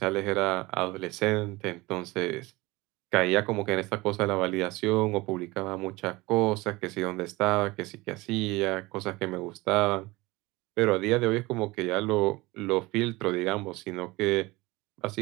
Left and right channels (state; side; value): quieter; left; 21.7 dB